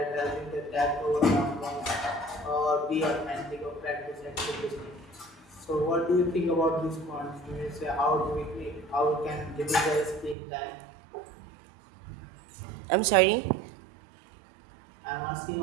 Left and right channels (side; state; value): left; drops out; at 10.4 s